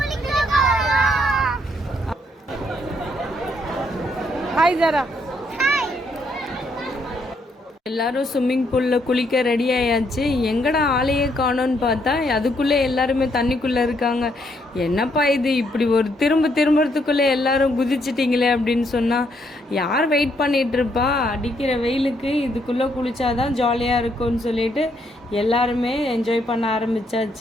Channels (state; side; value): normal; both; correlation 0.73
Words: ஹாய் ஜாரா. எல்லாரும் ஸ்விம்மிங் பூலில் குளிக்க ரெடி ஆயாச்சு. எங்கடா ஆளையே காணோன்னு பார்த்தா அதுக்குள்ளே எல்லாருமே தண்ணிக்குள்ளே இருக்காங்க. என்னப்பா இது, இப்படி ஒரு திரும்புறதுக்குள்ளே எல்லாரும் குதிச்சிட்டிங்களே அப்படின்னு சொன்னால் யார் வெயிட் பண்ணிகிட்ருப்பா? அடிக்கிற வெயிலுக்கு இதுக்குள்ளே குளிச்சாதான் ஜாலியாக இருக்கும்னு சொல்லிட்டு எல்லாருமே என்ஜாய் பண்ண